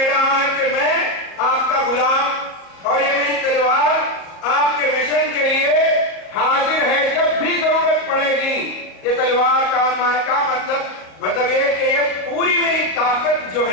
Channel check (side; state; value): right; late; 37 ms